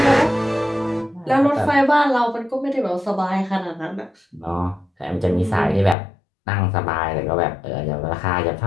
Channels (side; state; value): right; drops out; at 6.0 s